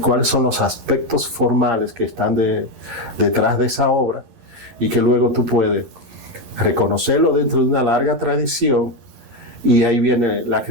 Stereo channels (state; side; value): late; left; 11 ms